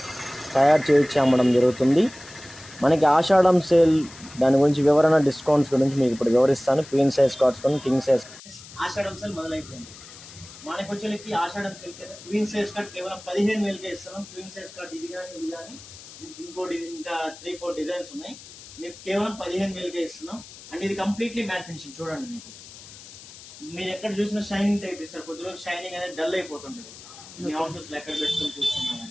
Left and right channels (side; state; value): left; noise; hiss, 18 dB below the sound